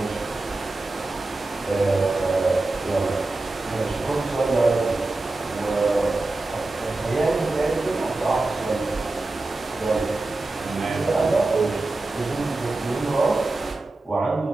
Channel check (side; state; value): left; quieter; 3.1 dB